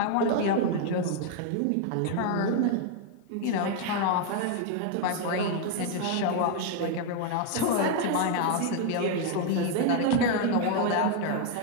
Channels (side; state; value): both; different; correlation 0.00